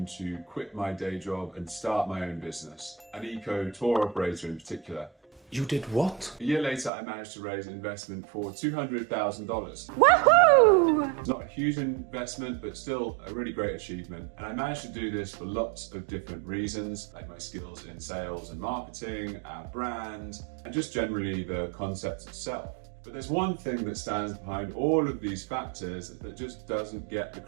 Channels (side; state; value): left; drops out; at 6.9 s